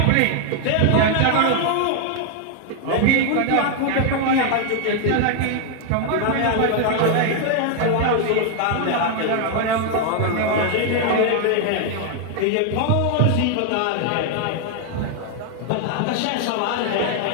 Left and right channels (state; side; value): different; both; correlation 0.00